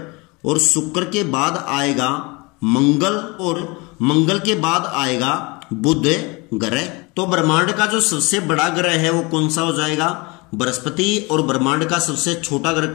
और शुक्र के बाद आएगा मंगल और मंगल के बाद आएगा बुध ग्रह। तो ब्रह्मांड का जो सबसे बड़ा ग्रह है वो कौन सा हो जाएगा? बृहस्पति। और ब्रह्मांड का सबसे छोटा ग्रह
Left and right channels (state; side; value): quieter; right; 26.5 dB